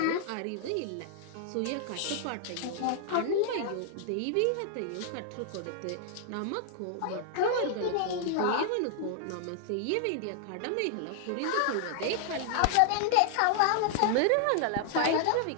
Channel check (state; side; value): different; both; correlation 0.00